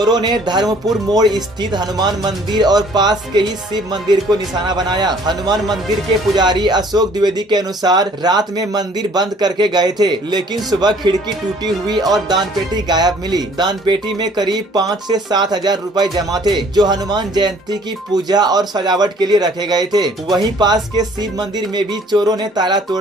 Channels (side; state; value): both; normal; correlation 0.57